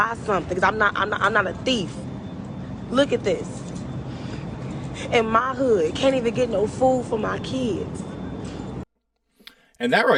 something because I'm not a thief. Look at this. In my hood, can't even get no food for my kids. And that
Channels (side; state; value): both; identical; correlation 1.00